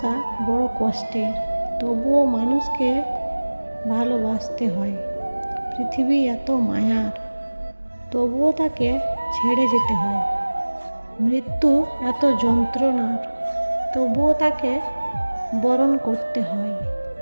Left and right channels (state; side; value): inverted; both; correlation -1.00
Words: বড় কষ্টের, তবুও মানুষকে ভালোবাসতে হয়। পৃথিবী এত মায়ার, তবুও তাকে ছেড়ে যেতে হয়। মৃত্যু এত যন্ত্রণার, তবুও তাকে বরণ করতে হয়।